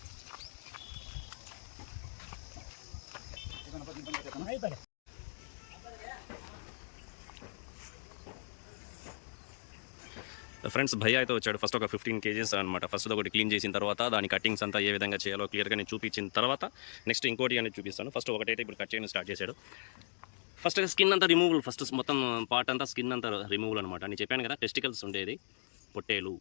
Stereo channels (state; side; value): silent; right; digital silence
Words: ఫ్రెండ్స్ భయ్య అయితే వచ్చాడు. ఫస్ట్ ఒక 15 కేజెస్ అనమాట. ఫస్ట్ ఒకటి క్లీన్ చేసిన తర్వాత దాని కటింగ్స్ అంతా ఏ విధంగా చేయాలో క్లియర్గా నేను చూపించిన తర్వాత నెక్స్ట్ ఇంకోటి అనేది చూపిస్తాను. ఫస్ట్ ఒకటైతే ఇప్పుడు కట్ చేయడం స్టార్ట్ చేశాడు. ఫస్ట్ స్కిన్ అంతా రిమూవల్, ఫస్ట్ మొత్తం పార్ట్ అంతా స్కిన్ అంతా రిమూవల్ అనమాట. నేను చెప్పాను కదా టెస్టికల్స్ ఉండేది పొట్టేలు.